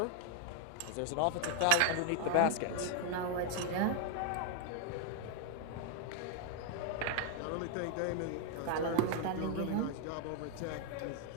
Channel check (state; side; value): different; both; correlation 0.00